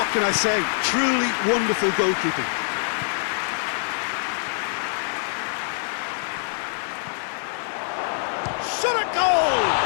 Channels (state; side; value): silent; right; 62 dB below the other